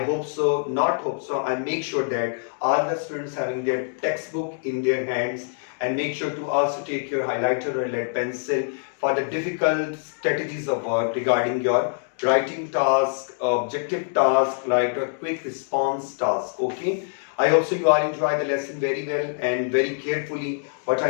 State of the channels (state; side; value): silent; right; 62 dB below the other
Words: so, not hope so. I make sure that all the students having their textbook in their hands, and make sure to also take your highlighter or lead pencil for the difficult strategies of work regarding your writing task, objective task, like a quick response task. Okay, I hope so you all enjoy the lesson very well and very carefully. What